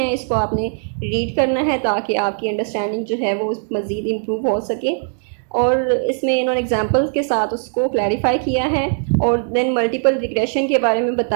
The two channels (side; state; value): left; silent; digital silence